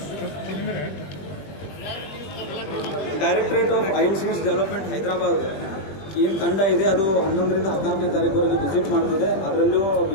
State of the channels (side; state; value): right; late; 21 ms